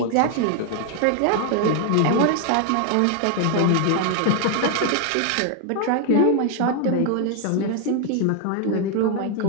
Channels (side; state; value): both; different; correlation 0.00